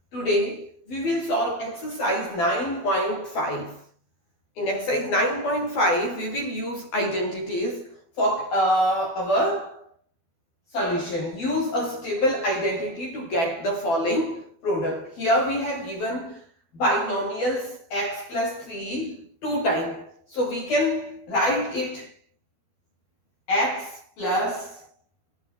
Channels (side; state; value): right; late; 12 ms